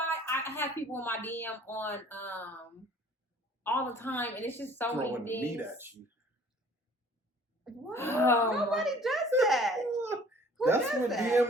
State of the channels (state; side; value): normal; both; correlation 0.53